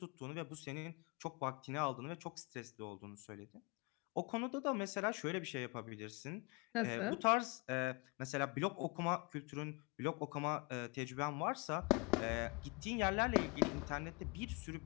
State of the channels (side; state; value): right; quieter; 29.5 dB